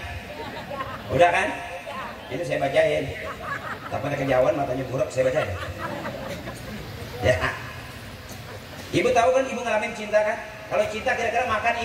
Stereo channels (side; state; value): both; identical; correlation 1.00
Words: Udah kan? Ini saya bacain. Tapi ada kejauhan matanya buruk, saya bacain. Ya. Ibu tahu kan, ibu ngalamin cinta kan? Kalau cinta kira-kira makan